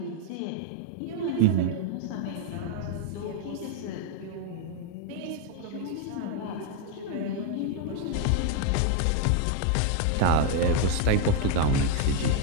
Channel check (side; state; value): both; different; correlation 0.00